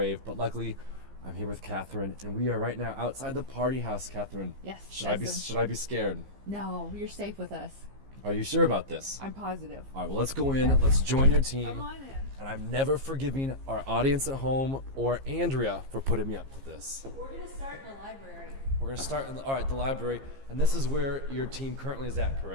but luckily I'm here with Catherine, and we are right now outside the party house. Catherine, yes. Should I be scared? No, you're safe with us. Are you sure about this? I'm positive. All right, well, let's go in. Let's join your team. Come on in. And I'm never forgiving our audience at home or Andrea for putting me up to this. We're going to start in the library. We're going to start in the library, and this is where your team currently is at,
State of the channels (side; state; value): left; late; 15 ms